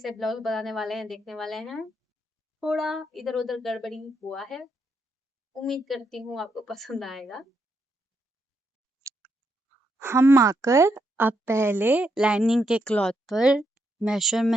ब्लाउज बनाने वाले हैं देखने वाले हैं। थोड़ा इधर उधर गड़बड़ी हुआ है, उम्मीद करती हूँ आपको पसंद आएगा। हम आकर अब पहले लाइनिंग के क्लॉथ पर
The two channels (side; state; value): both; normal; correlation 0.79